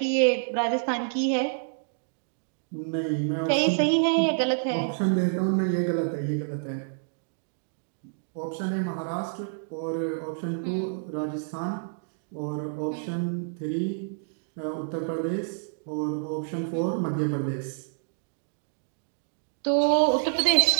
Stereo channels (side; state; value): left; silent; digital silence